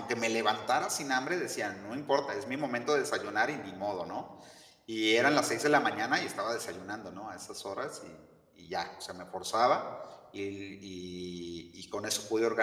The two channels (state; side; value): identical; both; correlation 1.00